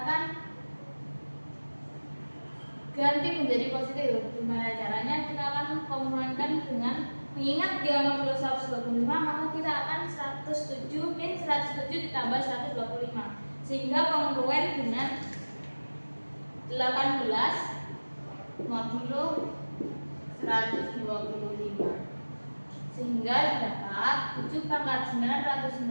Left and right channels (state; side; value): inverted; both; correlation -1.00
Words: ganti menjadi positif. Gimana caranya? Kita akan kongruen dengan mengingat dia modulo 125, maka kita akan 107 min 107 ditambah 125 sehingga kongruen dengan 18 modulo 125 sehingga dapat 7 pangkat